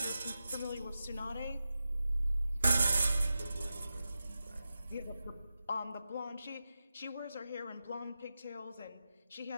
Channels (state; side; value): inverted; both; correlation -0.91